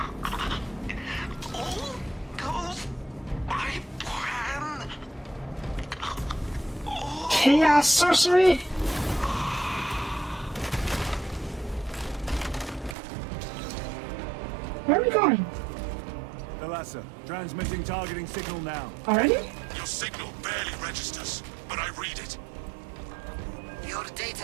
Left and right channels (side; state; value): left; drops out; at 13.0 s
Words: All goes by plan. Chaos sorcery? going? Thalassa, transmitting targeting signal now. Already? Your signal barely registers, but I read it. Your